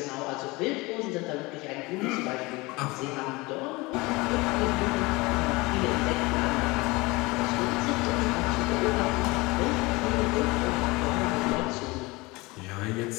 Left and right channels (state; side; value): quieter; right; 23.3 dB